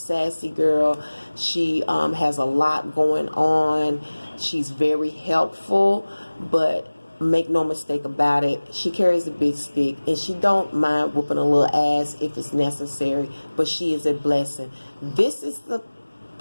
girl. She has a lot going on. She's very helpful, but make no mistake about it, she carries a big stick, and she don't mind whooping a little ass if it's necessary, but she is a blessing. This is the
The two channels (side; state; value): both; inverted; correlation -1.00